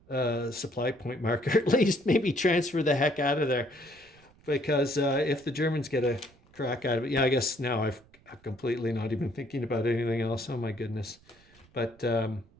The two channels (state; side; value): noise; right; rumble, 29 dB below the sound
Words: supply point marker. At least maybe transfer the heck out of there, because if the Germans get a crack out of it, yeah, I guess now I'm completely not even thinking about anything else. Oh my goodness. But